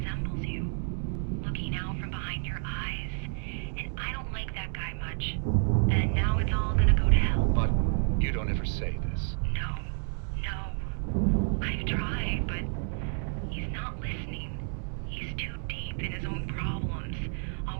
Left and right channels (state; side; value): silent; left; 55 dB below the other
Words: you. Looking out from behind your eyes, and I don't like that guy much. And now it's all gonna go to hell. But you don't ever say this. No. I've tried, but he's not listening. He's too deep in his own problems,